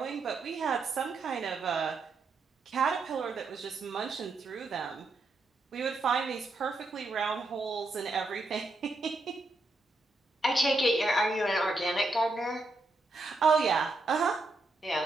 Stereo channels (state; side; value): quieter; left; 3.1 dB